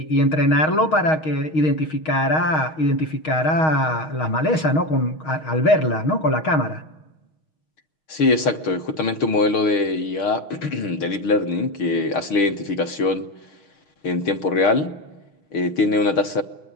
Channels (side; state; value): right; late; 6.5 ms